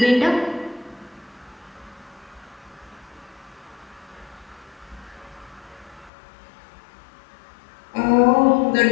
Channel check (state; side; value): drops out; right; at 6.1 s